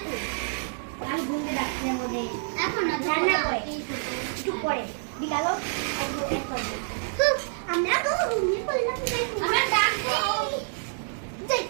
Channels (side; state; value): left; silent; digital silence